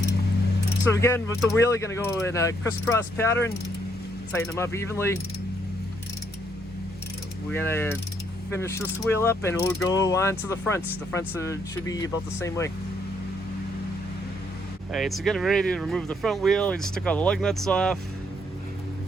So again, with the wheel, you're going to go in a crisscross pattern, tighten them up evenly. We're going to finish this wheel up and we'll go on to the fronts. The fronts should be about the same way. All right, so getting ready to remove the front wheel. We just took all the lug nuts off.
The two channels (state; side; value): normal; both; correlation 0.72